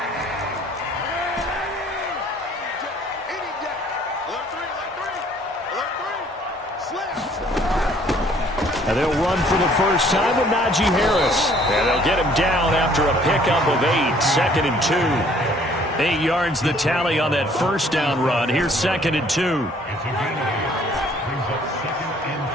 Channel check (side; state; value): both; normal; correlation 0.59